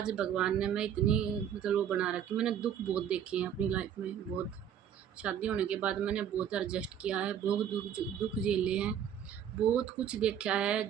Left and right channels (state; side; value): quieter; left; 9.1 dB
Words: भगवान ने मैं इतनी मतलब वो बना रखी। मैंने दुख बहुत देखे हैं अपनी लाइफ में, बहुत। शादी होने के बाद मैंने बहुत एडजस्ट किया है, बहुत दुख झेले हैं, बहुत कुछ देखा है